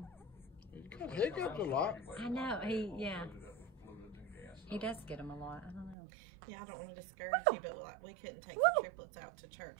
Hiccups a lot. I know. He does get them a lot. I don't know. Yeah, I don't want to discourage you, but like we couldn't take the triplets out to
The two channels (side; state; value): left; drops out; at 6.0 s